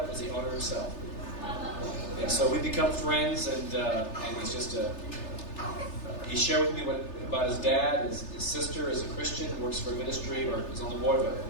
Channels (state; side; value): late; right; 3.3 ms